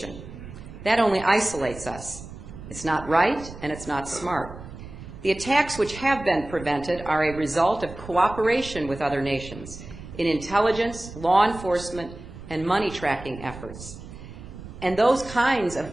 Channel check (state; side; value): noise; right; rumble, 14 dB below the sound